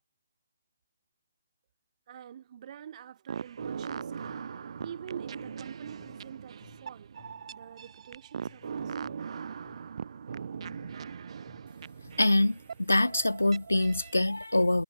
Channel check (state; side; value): inverted; both; correlation -0.93